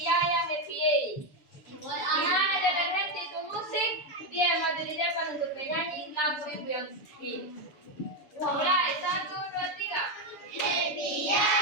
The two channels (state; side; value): late; right; 6.9 ms